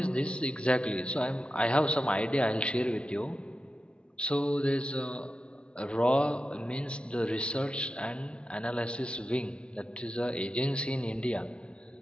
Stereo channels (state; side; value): late; right; 0.057 ms